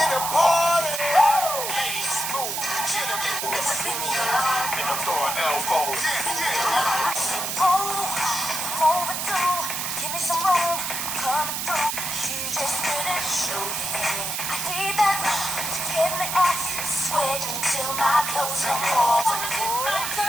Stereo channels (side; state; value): right; noise; hiss, 2 dB below the sound